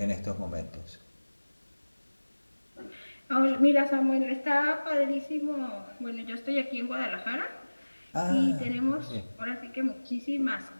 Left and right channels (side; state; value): both; inverted; correlation -1.00